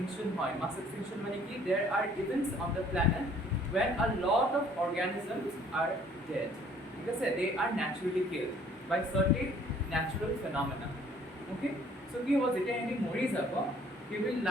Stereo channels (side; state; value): both; normal; correlation 0.57